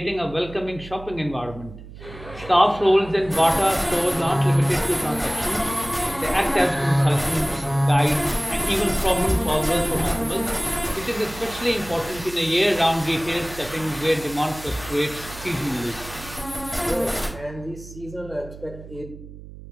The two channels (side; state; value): right; noise; hum, 16 dB below the sound